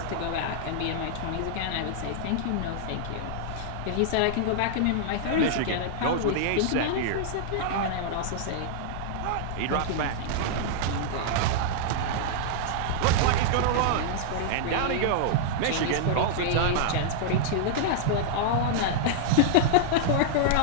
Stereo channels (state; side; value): different; both; correlation -0.01